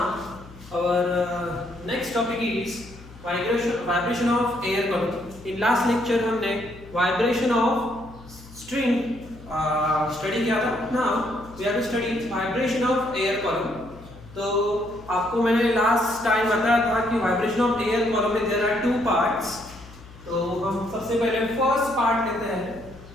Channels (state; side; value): noise; left; hum, 19 dB below the sound